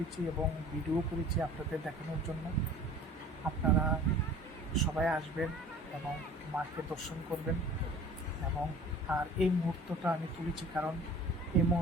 এবং ভিডিও করেছি আপনাদের দেখানোর জন্য। আপনারা সবাই আসবেন এবং মাকে দর্শন করবেন। এবং আর এই মুহূর্তটা আমি তুলেছি কারণ এই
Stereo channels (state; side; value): normal; both; correlation 0.46